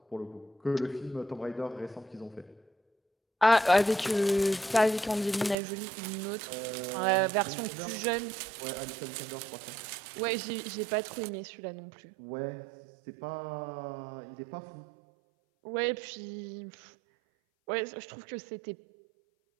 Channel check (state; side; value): drops out; left; at 5.6 s